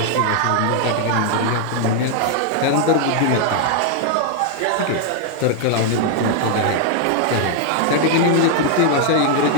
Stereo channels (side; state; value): both; different; correlation 0.00